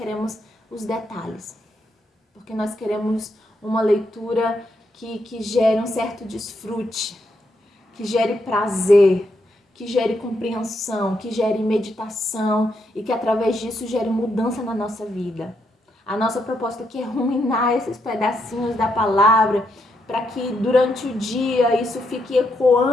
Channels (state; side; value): normal; both; correlation 0.79